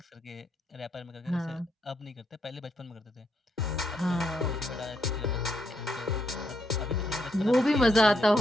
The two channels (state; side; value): normal; both; correlation 0.77